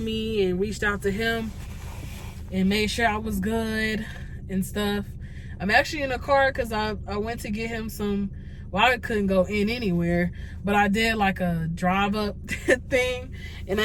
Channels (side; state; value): both; identical; correlation 1.00